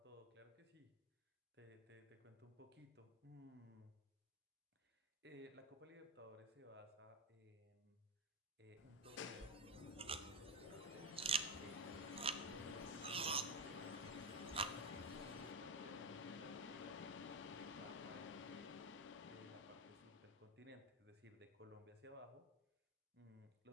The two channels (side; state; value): both; normal; correlation 0.09